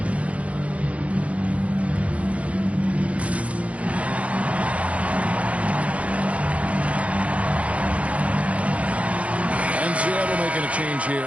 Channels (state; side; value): late; left; 0.065 ms